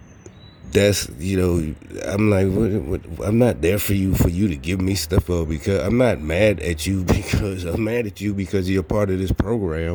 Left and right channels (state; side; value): identical; both; correlation 1.00